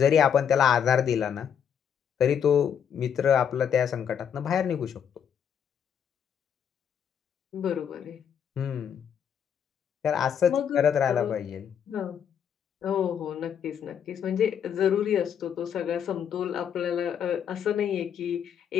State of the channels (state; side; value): quieter; right; 8.2 dB